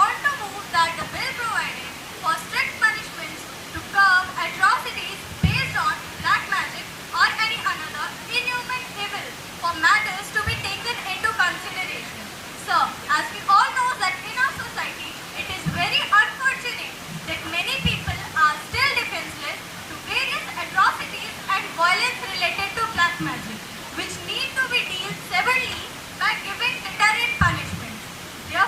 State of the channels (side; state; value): both; identical; correlation 1.00